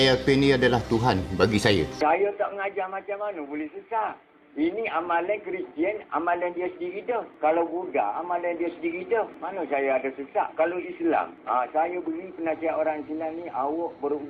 Pin ni adalah Tuhan bagi saya. Saya tak mengajar macam mana boleh sesat. Ini amalan Kristian, amalan dia sendiri dah. Kalau Buddha, amalan dia sendiri dah. Mana saya ada sesat? Kalau Islam, saya beri penasihat orang Islam ni, awak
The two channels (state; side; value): identical; both; correlation 1.00